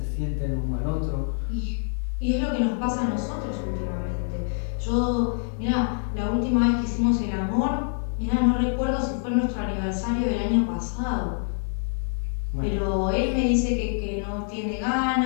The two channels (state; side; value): silent; right; 61 dB below the other